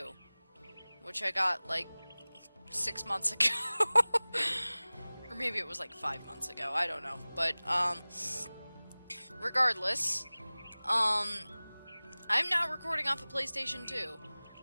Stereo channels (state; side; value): inverted; both; correlation -0.99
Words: which I got, like, 6 months ago. Or maybe it was like 5 months ago, I don't know. But, regardless, I'm now recording off a PlayStation 2,